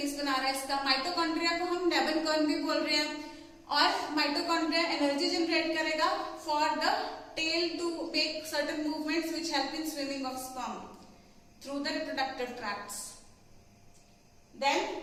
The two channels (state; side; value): identical; both; correlation 1.00